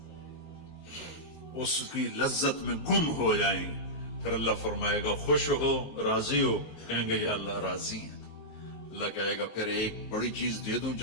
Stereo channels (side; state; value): right; late; 19 ms